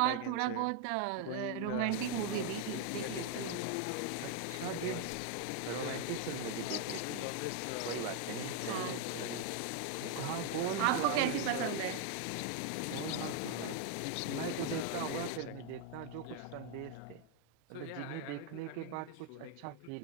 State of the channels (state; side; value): different; both; correlation 0.00